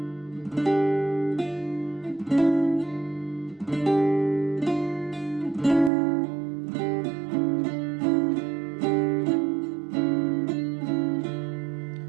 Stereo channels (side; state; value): left; drops out; at 5.9 s